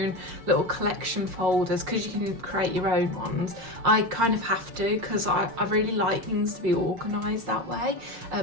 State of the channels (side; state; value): left; late; 6.3 ms